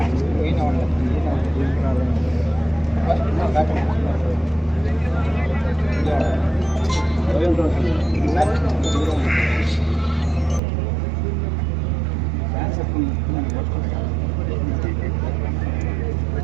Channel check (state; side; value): drops out; left; at 10.6 s